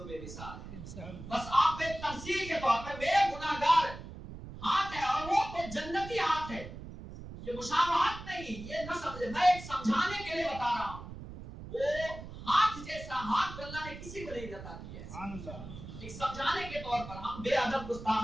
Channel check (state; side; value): noise; right; rumble, 12 dB below the sound